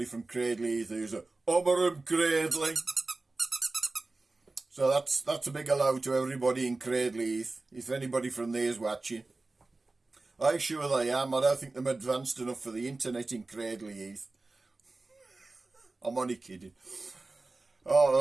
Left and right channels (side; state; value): left; quieter; 3.3 dB